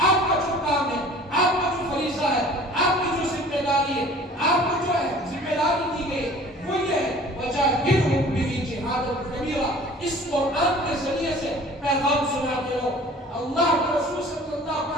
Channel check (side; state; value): both; normal; correlation 0.47